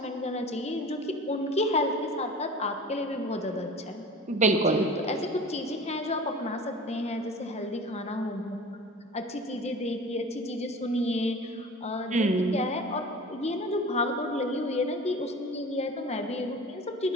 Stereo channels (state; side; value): normal; both; correlation 0.38